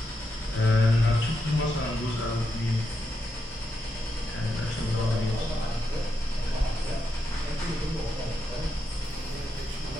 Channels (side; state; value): both; normal; correlation 0.84